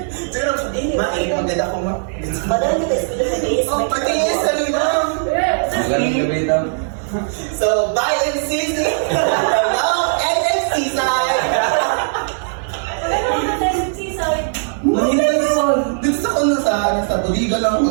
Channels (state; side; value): silent; left; digital silence